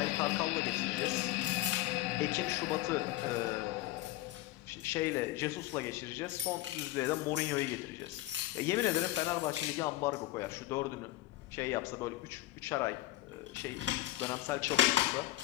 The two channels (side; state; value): right; quieter; 16.4 dB